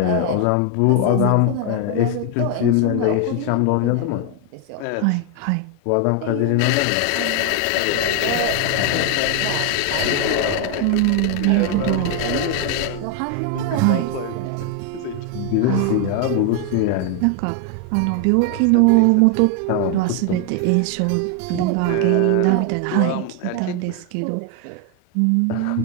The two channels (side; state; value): both; different; correlation 0.01